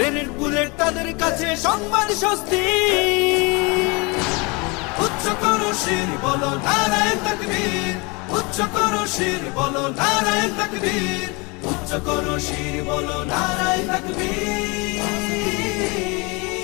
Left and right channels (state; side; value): quieter; right; 28.5 dB